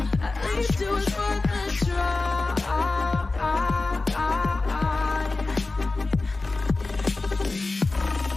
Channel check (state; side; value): quieter; right; 3.4 dB